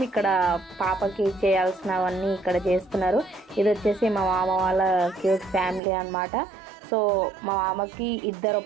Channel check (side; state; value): left; drops out; at 5.8 s